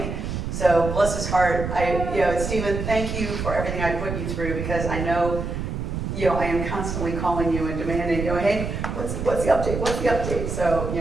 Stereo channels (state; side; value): noise; right; rumble, 4 dB below the sound